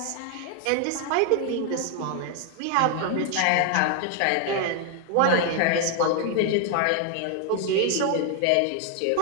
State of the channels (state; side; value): different; both; correlation 0.00